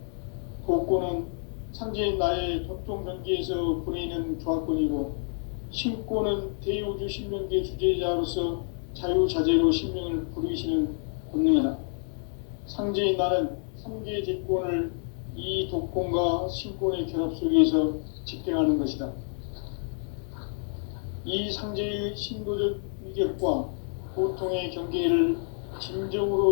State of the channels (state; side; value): silent; right; 59 dB below the other